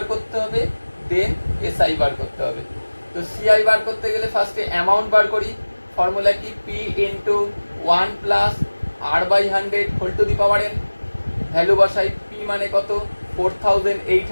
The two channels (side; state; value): both; inverted; correlation -1.00